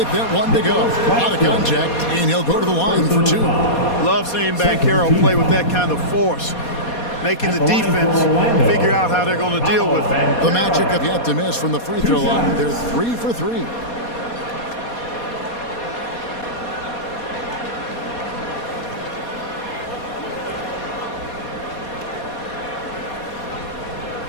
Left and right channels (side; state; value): right; late; 4.2 ms